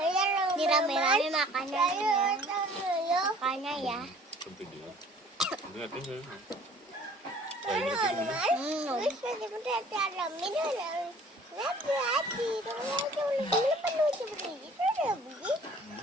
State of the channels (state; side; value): normal; both; correlation 0.52